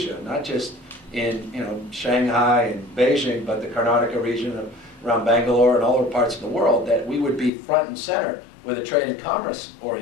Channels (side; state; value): right; drops out; at 7.5 s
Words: not just in Shanghai and Beijing, but the Karnataka region around Bangalore and all other parts of the world, that we would be front and center with a trade and commerce